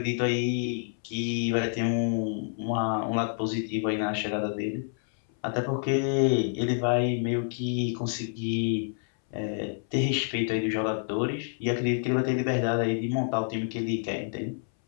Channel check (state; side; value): silent; right; 59 dB below the other